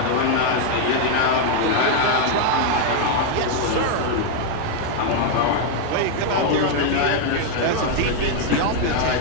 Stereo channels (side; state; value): both; different; correlation 0.00